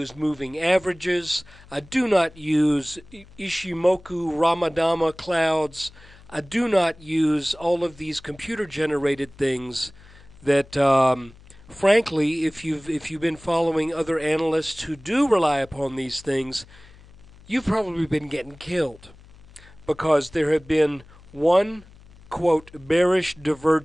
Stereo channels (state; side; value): noise; left; hum, 23 dB below the sound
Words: moving averages, I do not use Ishimoku Ramadama clouds, I do not use all of these computer-generated things that frankly, if you've been following other analysts who do rely upon these things, you've probably been getting killed, because there have been one, quote, bearish